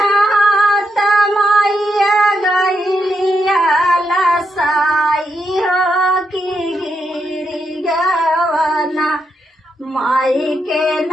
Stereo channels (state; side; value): normal; both; correlation 0.82